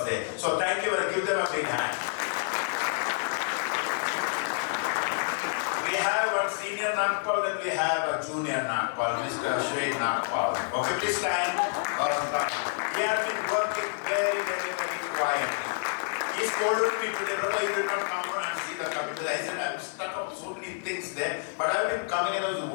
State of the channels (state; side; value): silent; right; digital silence